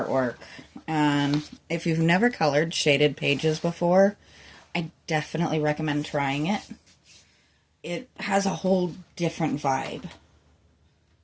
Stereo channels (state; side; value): identical; both; correlation 1.00